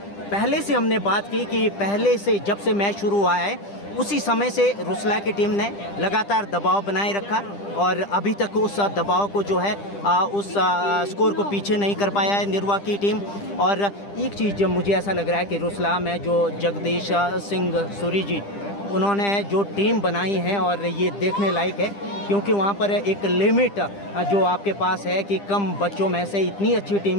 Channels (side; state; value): right; late; 10 ms